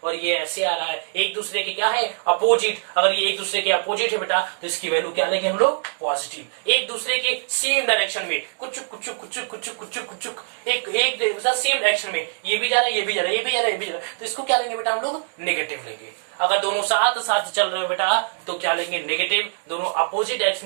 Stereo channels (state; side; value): silent; left; 63 dB below the other